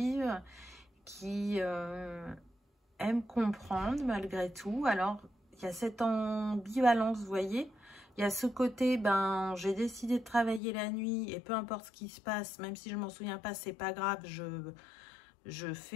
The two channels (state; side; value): drops out; right; at 10.6 s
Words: qui aiment comprendre malgré tout. Alors, il y a cette ambivalence, vous voyez. Il y a ce côté, ben, j'ai décidé de travailler la nuit, et peu importe ce qui se passe, même si je m'en souviens pas, c'est pas grave, je